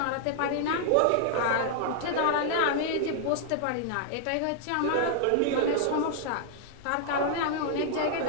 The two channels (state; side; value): different; both; correlation -0.01